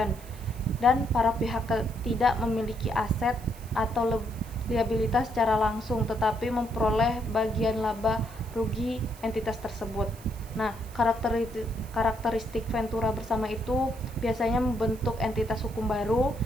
dan para pihak tidak memiliki aset atau liabilitas secara langsung tetapi memperoleh bagian laba rugi entitas tersebut. Nah, karakteristik ventura bersama itu biasanya membentuk entitas hukum baru.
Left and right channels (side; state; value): right; noise; hiss, 21 dB below the sound